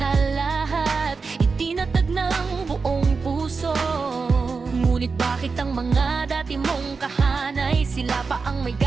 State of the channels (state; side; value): quieter; left; 4.7 dB